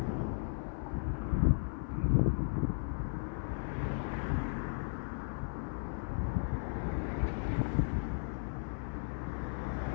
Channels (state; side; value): silent; right; 54 dB below the other